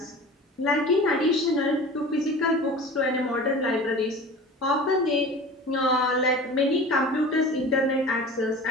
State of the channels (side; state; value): both; normal; correlation 0.38